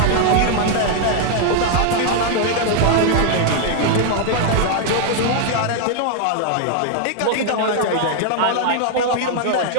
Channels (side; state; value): both; different; correlation 0.00